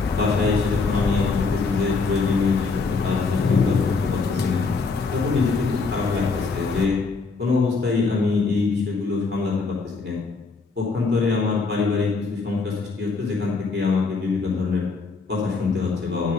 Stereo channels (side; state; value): right; quieter; 4.3 dB